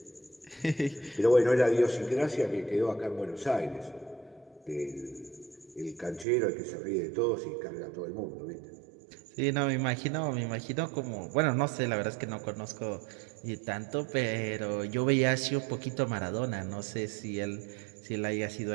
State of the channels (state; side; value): drops out; left; at 6.2 s